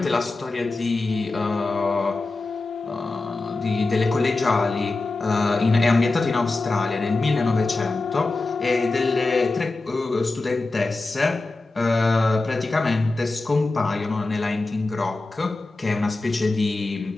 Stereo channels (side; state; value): right; quieter; 3.3 dB